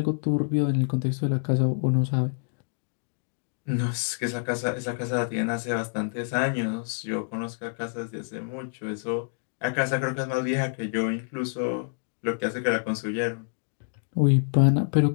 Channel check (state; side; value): silent; right; digital silence